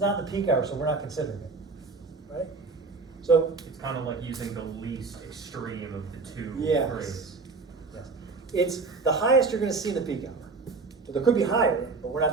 the peak hour, so we're not considering it. Right? So, It's kind of like using the least extreme of the two yes. grades. Yes. It's the highest you're going to see in the peak hour. But there could be higher, but we're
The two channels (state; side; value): quieter; left; 4.1 dB